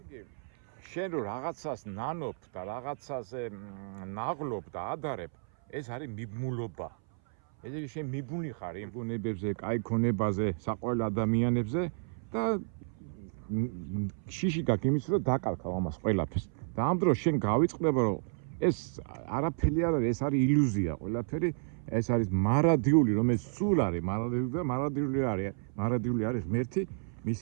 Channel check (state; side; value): silent; left; 57 dB below the other